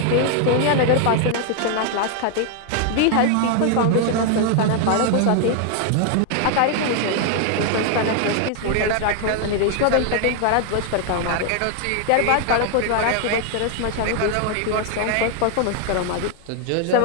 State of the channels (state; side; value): different; both; correlation 0.00